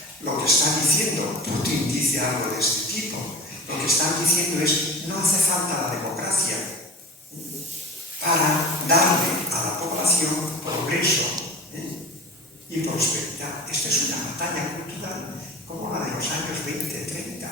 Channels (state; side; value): normal; both; correlation 0.36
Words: Lo que está diciendo, Putin dice algo de este tipo, lo que están diciendo es: no hace falta la democracia para darle a la población progreso y prosperidad. Esta es una batalla cultural como la de los años 20,